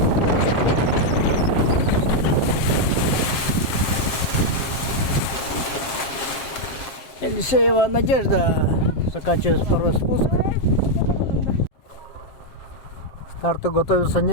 Елисеева Надежда заканчивает второй спуск. К старту готовится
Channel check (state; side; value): late; right; 7.6 ms